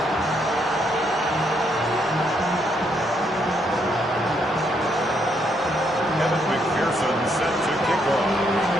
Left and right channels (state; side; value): normal; both; correlation 0.74